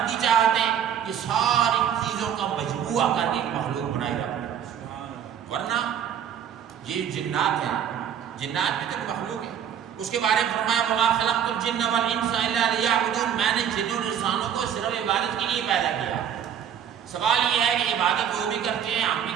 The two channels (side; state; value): left; quieter; 8.9 dB